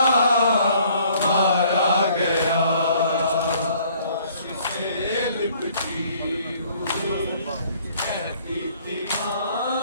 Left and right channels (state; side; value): inverted; both; correlation -0.59